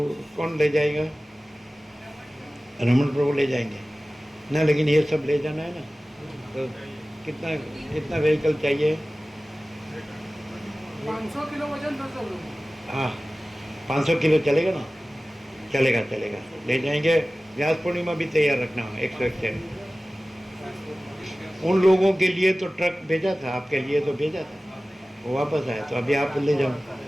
कौन ले जाएगा? रमन प्रभु ले जाएंगे ना, लेकिन ये सब ले जाना है ना। तो कितना व्हीकल चाहिए? 500 किलो वजन था सब लोग। हाँ 500 किलो चलेगा ना? चलेगा, ले जाएंगे। व्यास पूर्णिमा भी तैयार रखना हो 101। उन लोगों के लिए तो ट्रक भेजा था, आपके लिए तो भेजा था, वो वापस आए। तो अभी आप ले जाओ,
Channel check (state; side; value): normal; both; correlation 0.97